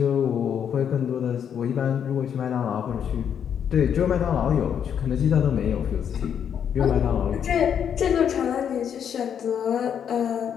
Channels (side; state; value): right; quieter; 8.3 dB